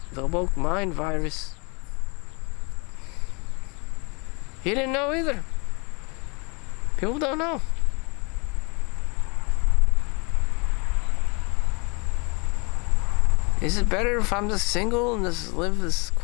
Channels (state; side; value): quieter; right; 30.9 dB